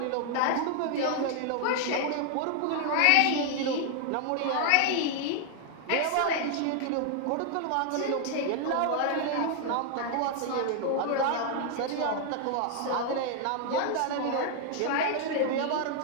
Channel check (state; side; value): different; both; correlation 0.00